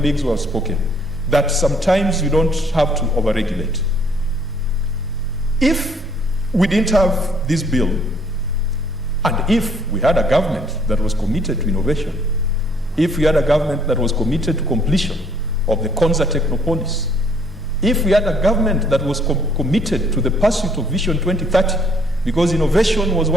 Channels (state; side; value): normal; both; correlation 0.63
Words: who have spoken that sometimes you don't have to overregulate. If we didn't have this bill, and if we had a government that was committed to innovation, if we had a government that was committed to completion of the Konza Technopolis, if we had a government that was committed to the pursuit of Vision 2030, because innovation was